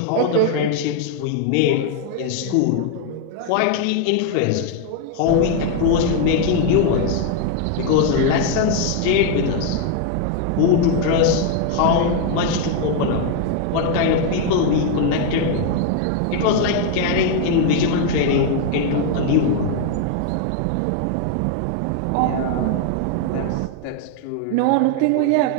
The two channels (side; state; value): both; different; correlation 0.00